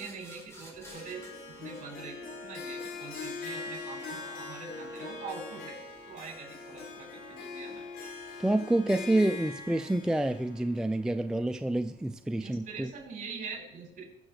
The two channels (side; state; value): both; normal; correlation 0.87